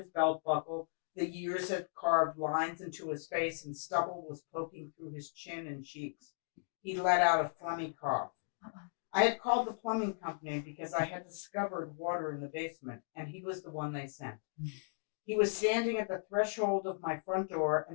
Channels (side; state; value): right; silent; digital silence